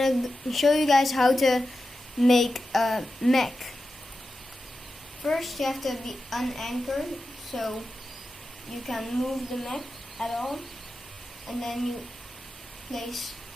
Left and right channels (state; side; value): normal; both; correlation 0.92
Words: show you guys how to make a mech. First you have to be unanchored so you can move the mech at all, and then you place